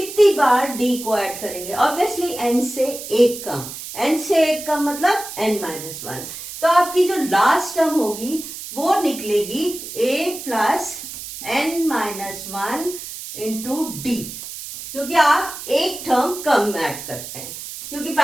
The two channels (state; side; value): noise; right; hiss, 10 dB below the sound